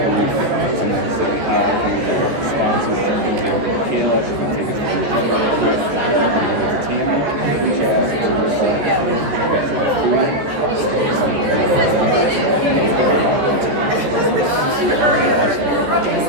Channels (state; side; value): late; left; 14 ms